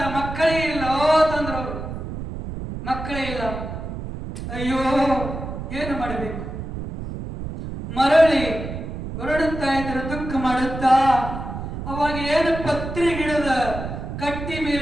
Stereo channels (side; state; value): right; noise; rumble, 7 dB below the sound